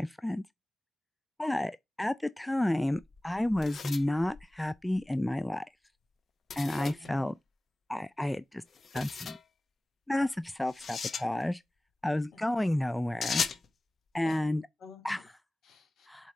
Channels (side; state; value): both; normal; correlation 0.98